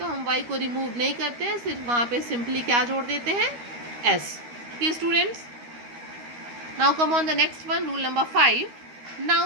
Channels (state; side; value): late; left; 13 ms